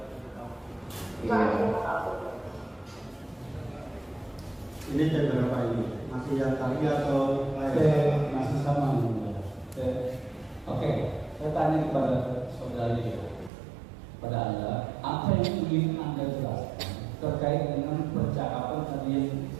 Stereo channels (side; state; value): left; drops out; at 13.5 s